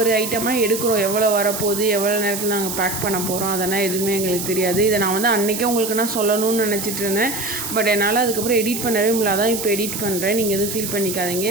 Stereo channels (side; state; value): right; noise; hiss, 5 dB below the sound